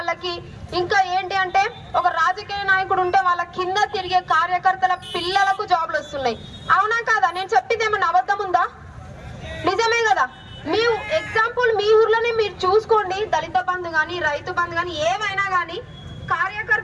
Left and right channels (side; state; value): both; identical; correlation 1.00